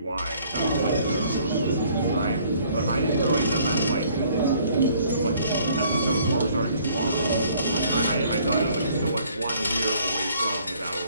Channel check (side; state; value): both; inverted; correlation -0.60